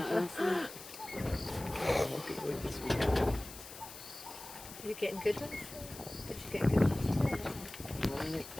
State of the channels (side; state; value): left; noise; hiss, 14 dB below the sound